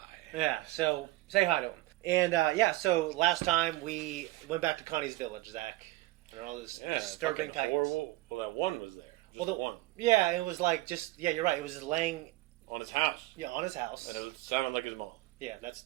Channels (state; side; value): quieter; left; 18.6 dB